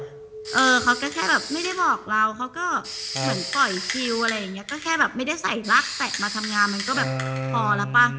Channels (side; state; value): both; identical; correlation 1.00